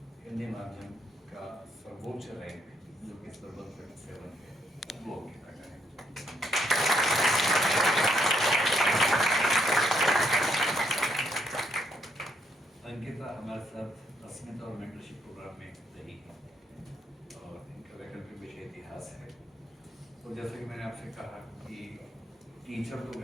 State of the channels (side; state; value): both; normal; correlation 0.74